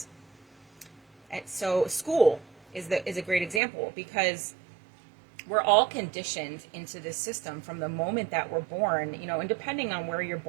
so school is a great example, because we're all conditioned into this system from the moment that we're born, you know, and depending on where you're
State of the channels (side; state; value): left; drops out; at 3.6 s